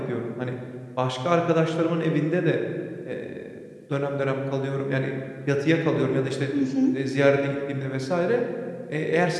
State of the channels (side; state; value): both; identical; correlation 1.00